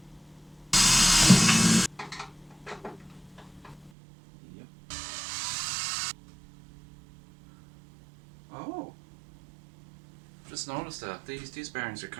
Yep. Oh, just noticed that these bearings are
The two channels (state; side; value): drops out; left; at 3.9 s